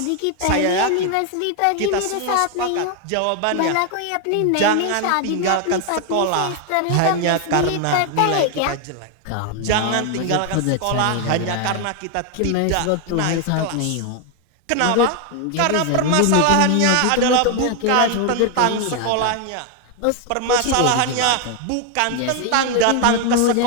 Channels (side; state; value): both; different; correlation 0.01